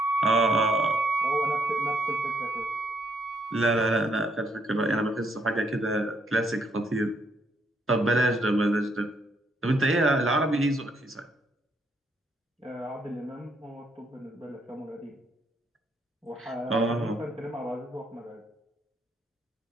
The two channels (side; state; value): both; normal; correlation 0.73